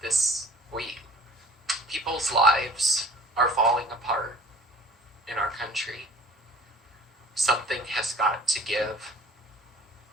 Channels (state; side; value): normal; both; correlation 0.48